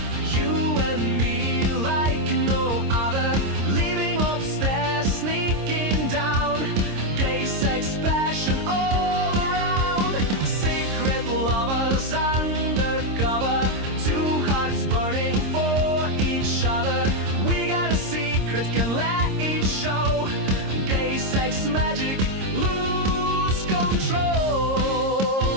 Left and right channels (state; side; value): late; left; 26 ms